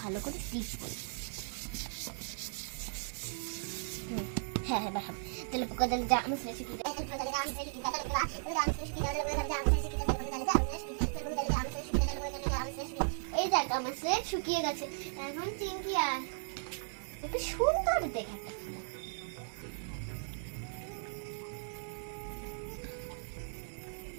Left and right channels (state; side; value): silent; left; digital silence